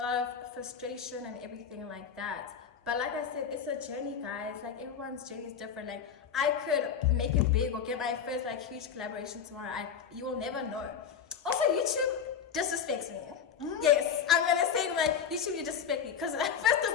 lot of frustration and everything like that. But like I said, it's a journey, guys. Like everyone's journey is different. Like I could make it big or get my first like huge collaboration tomorrow. You will never know. Also, YouTube disrespects me. Yes, I'm gonna say like YouTube, you disrespect me, because first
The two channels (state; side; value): quieter; right; 7.5 dB